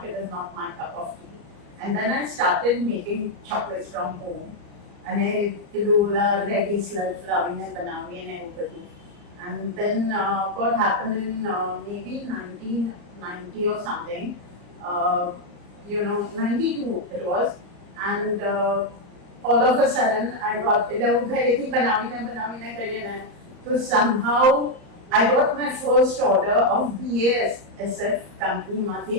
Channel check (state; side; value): late; left; 34 ms